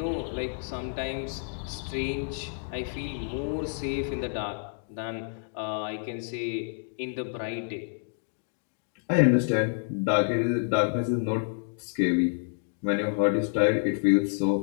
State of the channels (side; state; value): right; silent; digital silence